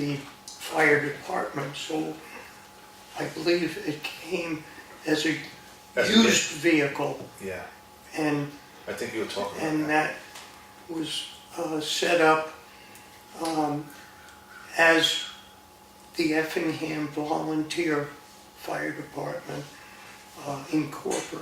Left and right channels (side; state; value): both; identical; correlation 1.00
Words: fire department, so I believe it came as a As a used vehicle, yeah. and I think you were talking about and that. that was set up as the Effingham Volunteer Fire Department